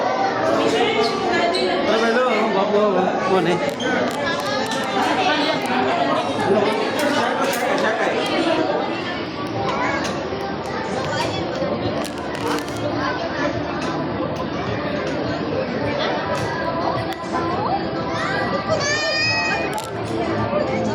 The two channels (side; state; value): both; identical; correlation 1.00